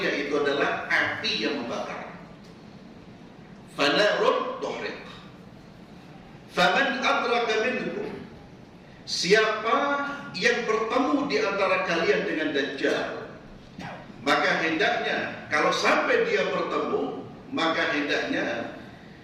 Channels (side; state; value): both; identical; correlation 1.00